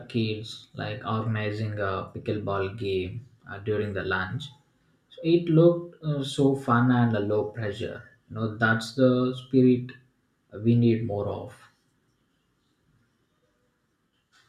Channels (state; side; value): identical; both; correlation 1.00